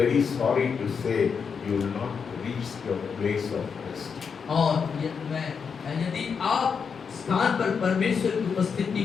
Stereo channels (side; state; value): right; quieter; 6.1 dB